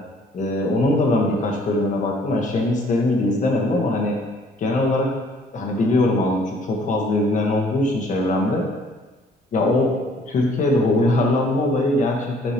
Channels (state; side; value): normal; both; correlation 0.59